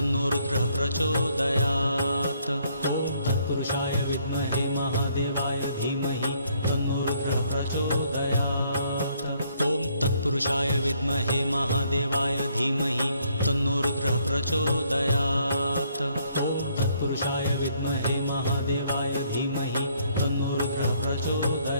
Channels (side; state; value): both; inverted; correlation -0.68